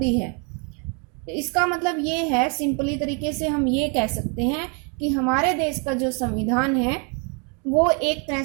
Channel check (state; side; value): quieter; left; 36.7 dB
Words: है। इसका मतलब ये है, सिंपली तरीके से हम ये कह सकते हैं कि हमारे देश का जो संविधान है वो एक तरह